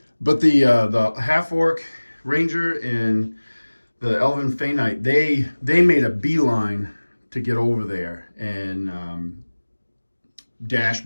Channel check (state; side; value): inverted; both; correlation -1.00